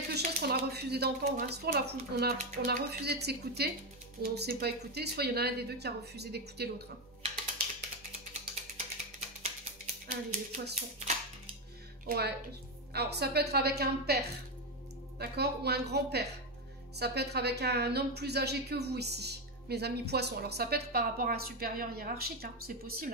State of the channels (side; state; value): both; normal; correlation 0.09